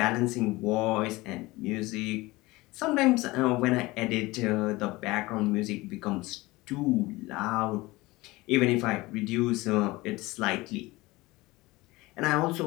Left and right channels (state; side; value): quieter; right; 20.9 dB